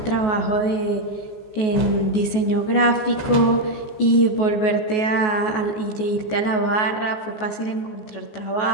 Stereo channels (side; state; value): right; late; 14 ms